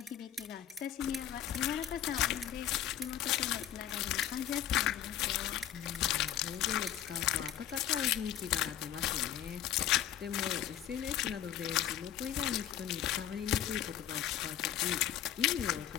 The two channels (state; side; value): quieter; right; 10.9 dB